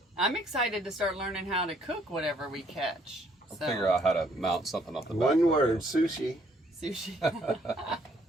I'm excited to start learning how to cook whatever we catch. I'll So, figure out how to mount something off the back. One of it. word, sushi. sushi.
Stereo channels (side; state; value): both; normal; correlation 0.66